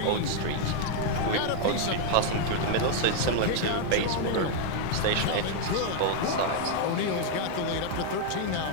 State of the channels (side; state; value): both; different; correlation 0.00